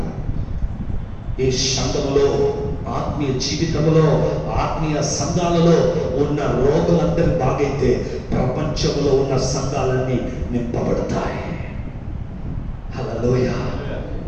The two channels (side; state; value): both; identical; correlation 1.00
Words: ఈ సంఘములో, ఆత్మీయ జీవితంలో, ఆత్మీయ సంఘాలలో ఉన్న రోగులందరూ బాగైతే ప్రపంచంలో ఉన్న సంఘాలన్నీ నింపబడతాయి. హల్లెలూయా.